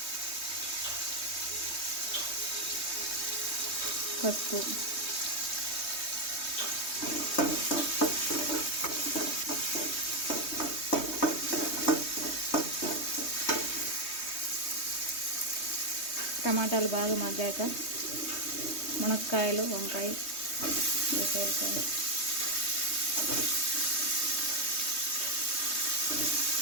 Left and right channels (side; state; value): right; late; 3.2 ms